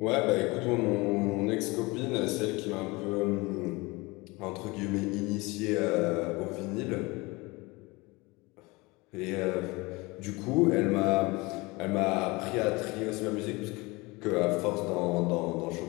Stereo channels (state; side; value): quieter; right; 24.1 dB